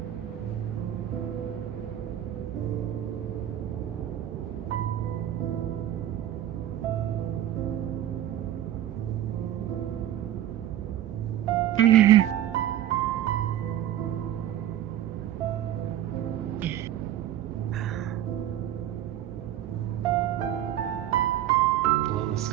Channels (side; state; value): left; quieter; 11.9 dB